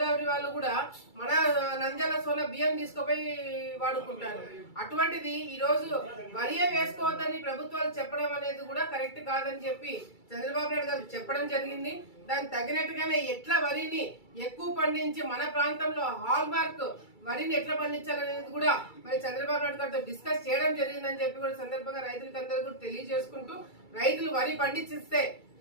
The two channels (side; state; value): right; late; 2.3 ms